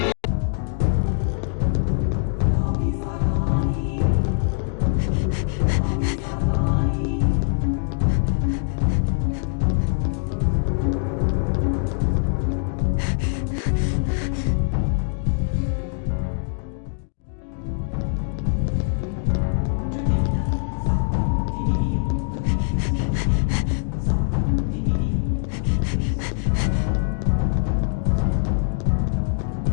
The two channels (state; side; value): silent; right; digital silence